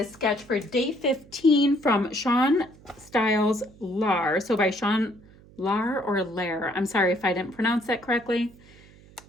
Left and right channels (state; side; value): noise; right; hum, 24 dB below the sound